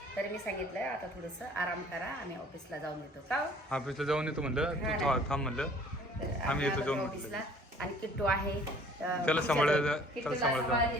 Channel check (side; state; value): both; normal; correlation 0.54